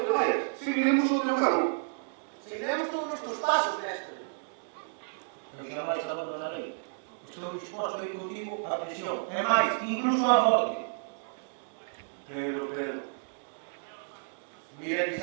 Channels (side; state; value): left; silent; digital silence